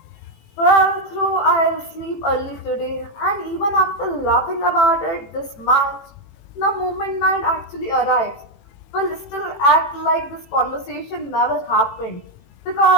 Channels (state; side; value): late; right; 18 ms